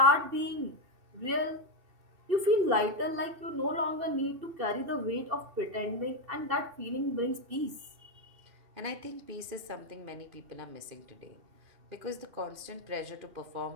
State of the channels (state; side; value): late; left; 2.7 ms